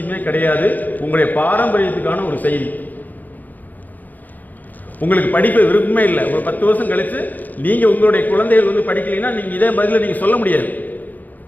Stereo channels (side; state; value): right; late; 0.083 ms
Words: கிடையாது, உங்களுடைய பாரம்பரியத்துக்கான ஒரு செய்தி. உங்களுக்கு படிப்பு விருப்பமே இல்லை, ஒரு 10 வருஷம் கழித்து நீங்கள் உங்களுடைய குழந்தைகள் வந்து படிக்கலைன்னா நீங்கள் இதே பதில் நீங்கள் சொல்ல முடியாது.